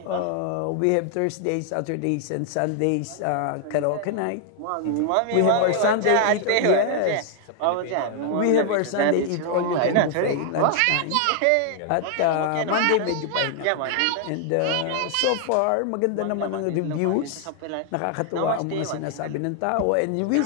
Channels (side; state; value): both; different; correlation 0.00